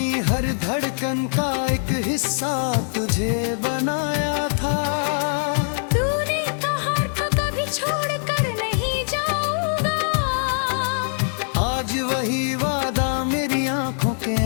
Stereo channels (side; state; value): right; silent; digital silence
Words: हर धड़कन का एक हिस्सा तुझे बनाया था। तूने कहा था कभी छोड़कर नहीं जाऊंगा, आज वही वादा मेरी आंखों के